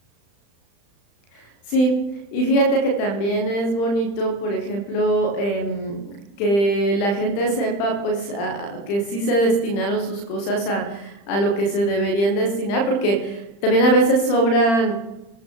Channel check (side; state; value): right; late; 35 ms